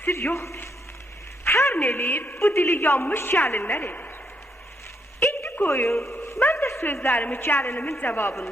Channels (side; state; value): both; normal; correlation 0.76